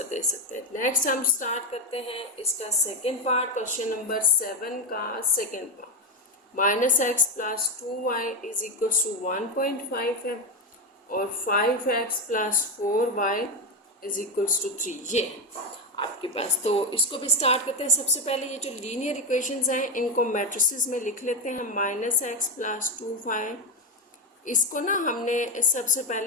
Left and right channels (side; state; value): both; normal; correlation 0.12